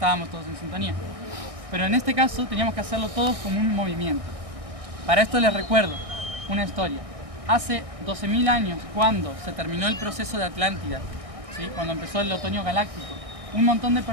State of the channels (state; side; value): late; left; 1.6 ms